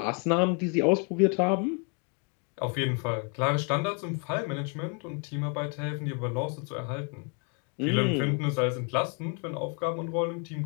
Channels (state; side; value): quieter; right; 34.4 dB